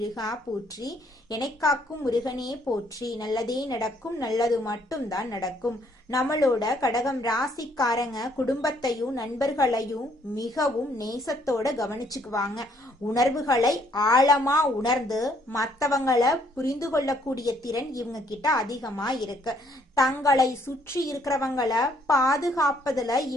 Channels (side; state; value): both; normal; correlation 0.66